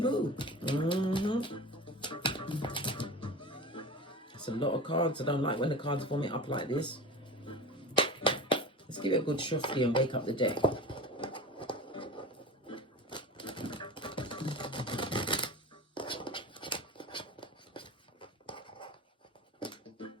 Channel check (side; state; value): both; normal; correlation 0.33